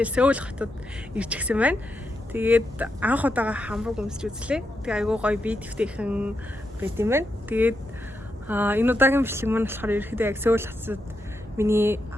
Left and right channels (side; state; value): both; normal; correlation 0.84